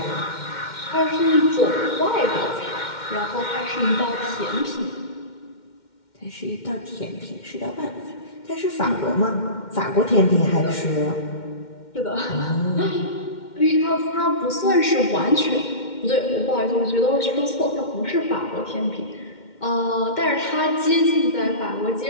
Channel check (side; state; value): right; late; 2.1 ms